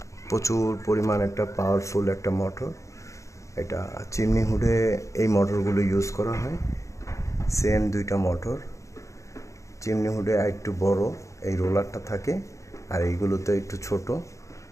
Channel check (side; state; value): right; late; 0.15 ms